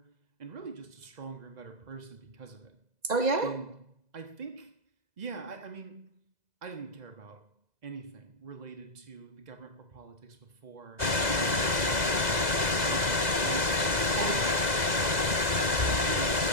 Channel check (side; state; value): left; late; 2.0 ms